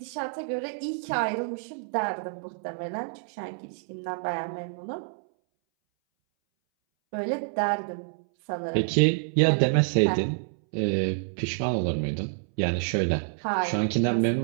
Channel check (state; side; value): silent; left; 60 dB below the other